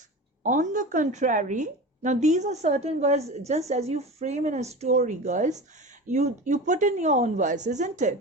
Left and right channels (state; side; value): normal; both; correlation 0.30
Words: on the contrary, now these are certain words, just as you frame in a story, girls, you put in your own words, isn't